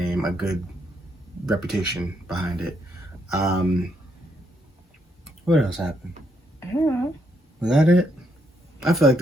a good reputation behind it. What else happened? I don't know. Was that it? I feel like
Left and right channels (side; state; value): both; normal; correlation 0.76